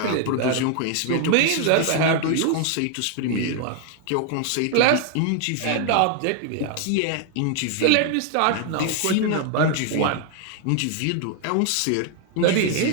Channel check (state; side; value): different; both; correlation 0.00